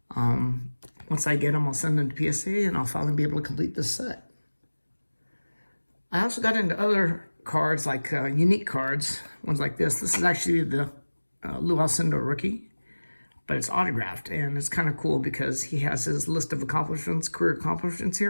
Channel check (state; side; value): inverted; both; correlation -1.00